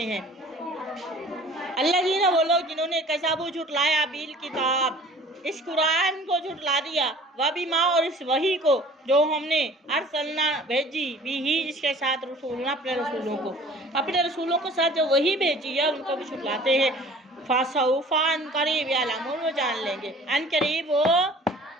हैं। अल्लज़ीना वो लोग जिन्होंने कज़बू झुटलाया बिल किताब इस कुरान को झुटला दिया वह भी माँ और इस वही को जो हमने अरसलना भेजी भी ही इसके साथ रसूलना अपने रसूलों के साथ जो वही भेजी है उनको भी झुटलाते हैं। फासौफा अन करीब यालमून वो जान लेंगे अन करीब वो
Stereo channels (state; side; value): normal; both; correlation 0.49